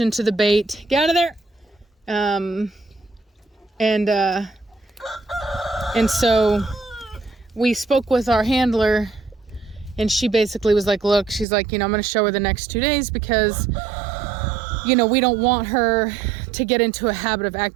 to the bait. Get out of there. And so we spoke with our handler, and she basically was like, look, she's like, I'm going to show her the next 2 days because, we don't want her to get into a habit of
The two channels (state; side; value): drops out; left; at 11.5 s